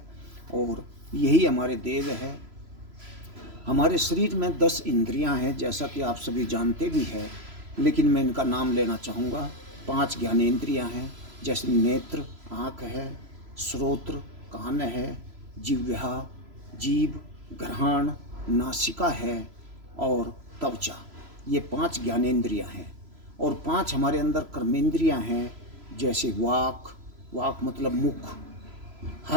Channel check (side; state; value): left; late; 3.0 ms